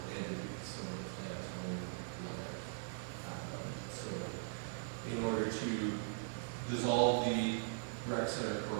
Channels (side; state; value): left; silent; digital silence